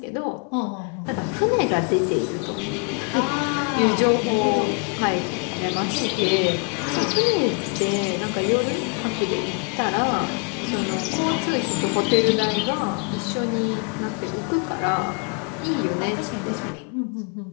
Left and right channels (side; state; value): right; quieter; 38.9 dB